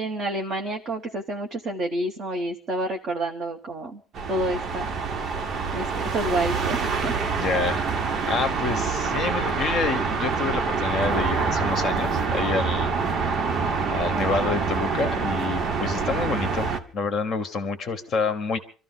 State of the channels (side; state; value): both; normal; correlation 0.53